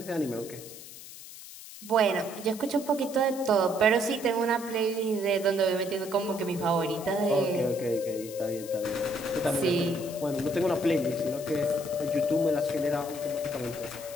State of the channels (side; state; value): left; noise; hiss, 15 dB below the sound